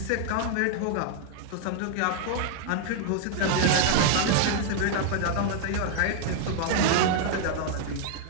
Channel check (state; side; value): different; both; correlation 0.00